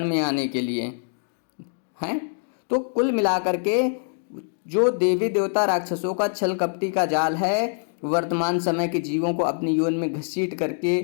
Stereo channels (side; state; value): right; silent; digital silence